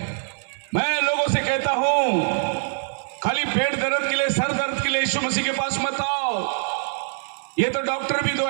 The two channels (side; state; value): left; silent; 59 dB below the other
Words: मैं लोगों से कहता हूं, खाली पेट दर्द के लिए, सर दर्द के लिए यीशु मसीह के पास मत आओ। ये तो डॉक्टर भी 2